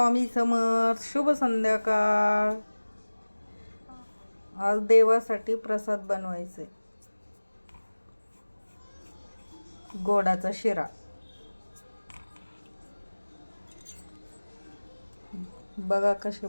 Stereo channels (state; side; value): inverted; both; correlation -1.00